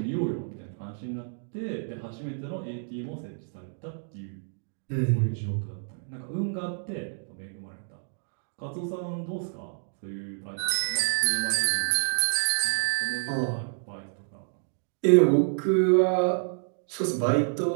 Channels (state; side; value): silent; left; digital silence